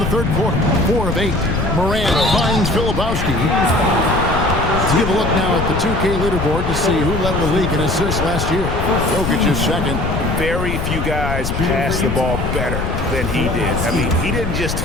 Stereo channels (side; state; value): left; noise; rumble, 3 dB below the sound